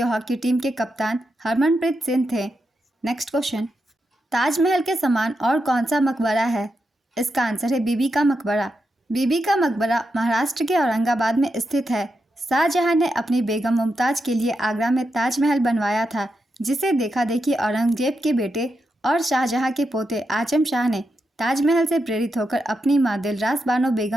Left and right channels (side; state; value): both; normal; correlation 0.86